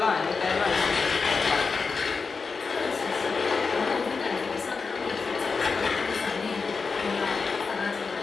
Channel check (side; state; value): right; quieter; 4.8 dB